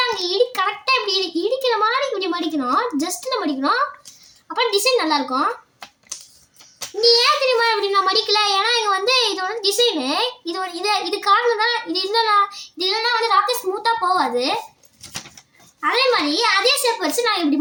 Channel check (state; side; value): identical; both; correlation 1.00